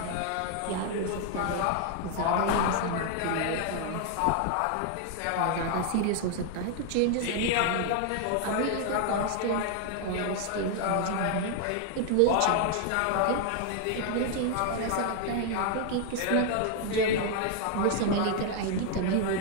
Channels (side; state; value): both; different; correlation 0.00